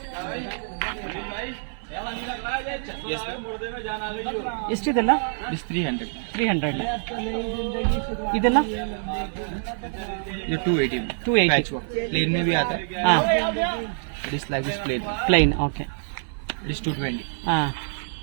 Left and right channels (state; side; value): silent; left; 57 dB below the other